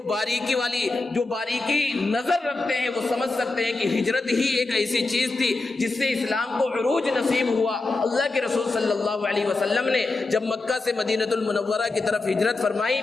باریکی نظر رکھتے ہیں وہ سمجھ سکتے ہیں کہ ہجرت ہی ایک ایسی چیز تھی جس سے اسلام کو عروج نصیب ہوا۔ اللہ کے رسول صلی اللہ علیہ وسلم نے جب مکہ سے مدینہ المنورہ کی طرف ہجرت فرمائی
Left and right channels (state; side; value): quieter; right; 3.4 dB